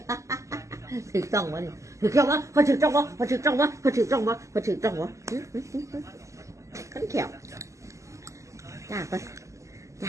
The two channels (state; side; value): late; left; 0.15 ms